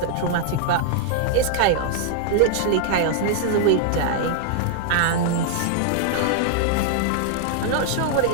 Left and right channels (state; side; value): different; both; correlation 0.00